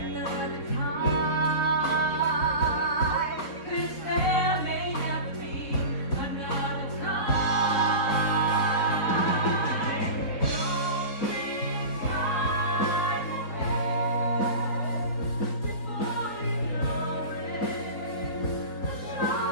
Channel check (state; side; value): late; right; 4.1 ms